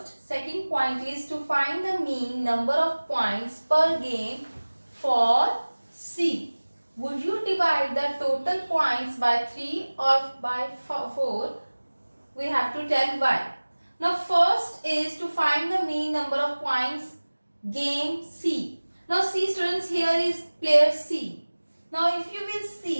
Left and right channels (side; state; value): both; inverted; correlation -1.00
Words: Second point is to find the mean number of points per game for C. Would you divide the total points by 3 or by 4? We have to tell why. Now first is to find the mean number of points game C. Now see students, here is player C. Now if you will